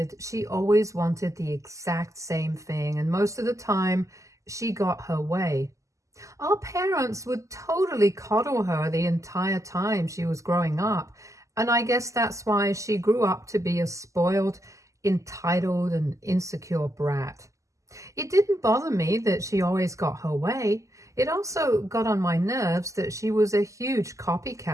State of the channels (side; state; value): left; late; 0.16 ms